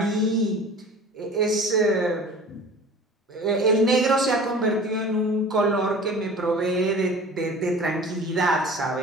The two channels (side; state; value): both; normal; correlation 0.42